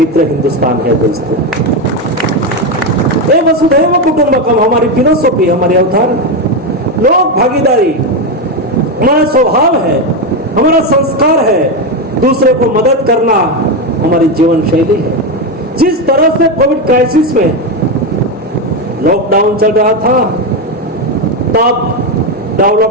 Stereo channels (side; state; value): both; normal; correlation 0.10